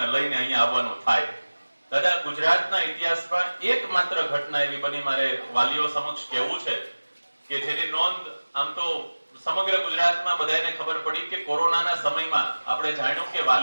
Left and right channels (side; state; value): both; inverted; correlation -1.00